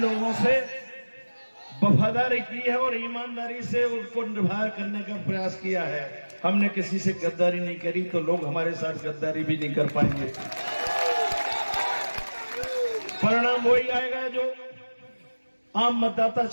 से वफादारी की है और ईमानदारी से उनको निभा करने का प्रयास किया है। हमने किसी से गद्दारी नहीं करी, तो लोग हमारे साथ गद्दारी भी नहीं कर पाएंगे। परिणाम वही आएगा जो आम मतदाता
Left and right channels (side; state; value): both; inverted; correlation -1.00